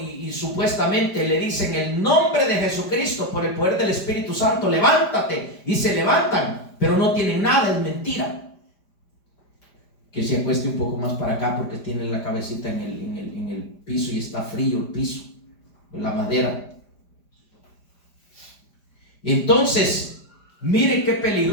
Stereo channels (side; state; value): right; late; 5.0 ms